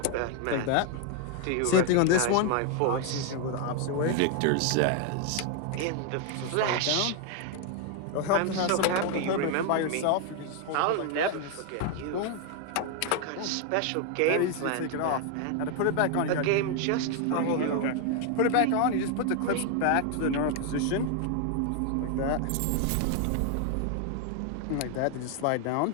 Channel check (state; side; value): different; both; correlation 0.00